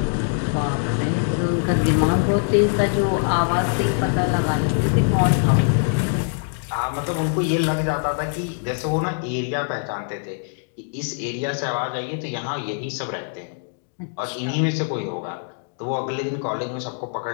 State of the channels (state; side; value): silent; right; digital silence